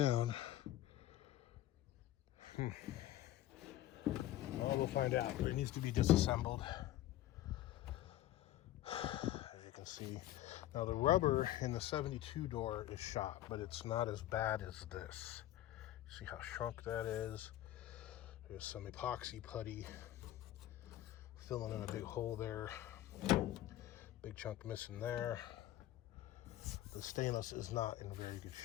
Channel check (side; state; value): right; quieter; 13.9 dB